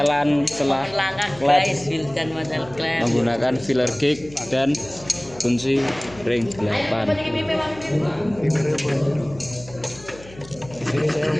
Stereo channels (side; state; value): left; noise; hum, 20 dB below the sound